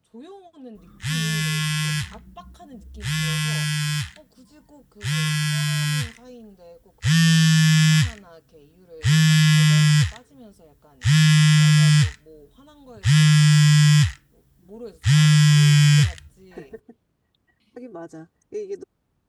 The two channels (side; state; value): both; identical; correlation 1.00